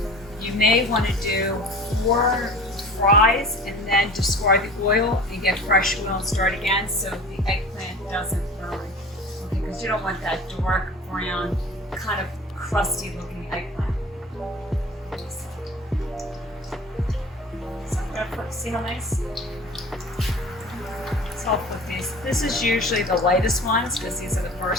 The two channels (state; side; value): normal; both; correlation 0.40